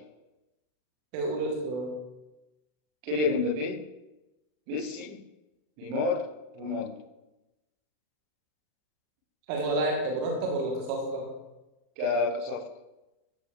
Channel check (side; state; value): left; late; 40 ms